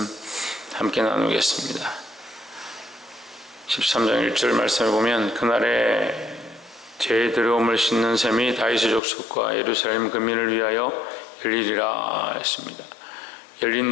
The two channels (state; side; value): drops out; right; at 9.0 s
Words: 함께 나누겠습니다. 13장 1절 말씀을 보면 그날에 제 들어옴을 씻는 셈이 다윗의 족속과 예루살렘 근민을 위하여 열리리라 했습니다.